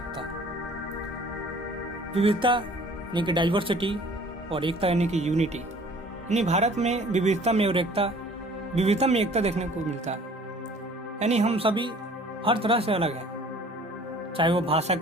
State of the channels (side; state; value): both; normal; correlation 0.51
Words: विविधता यानी कि डाइवर्सिटी और एकता यानी कि यूनिटी। यानी भारत में विविधता में एकता देखने को मिलता है। यानी हम सभी हर तरह से अलग हैं, चाहे वो भाषा